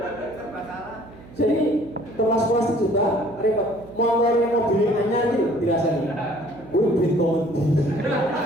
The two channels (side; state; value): right; noise; hum, 20 dB below the sound